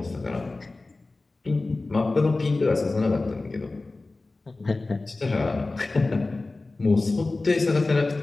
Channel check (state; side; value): quieter; right; 3.3 dB